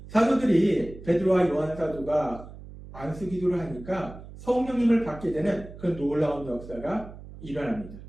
사도들이 베드로와 요한 사도가 안수 기도를 하니까 성령님을 받게 되는 그런 놀라운 역사가 일어납니다.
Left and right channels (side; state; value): right; noise; hum, 15 dB below the sound